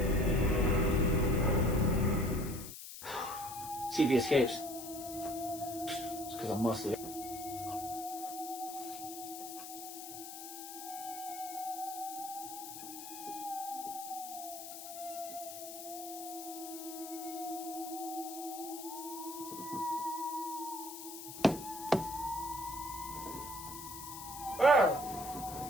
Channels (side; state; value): left; noise; hiss, 10 dB below the sound